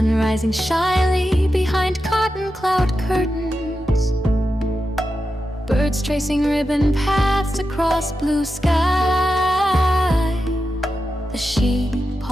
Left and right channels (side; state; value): both; normal; correlation 0.90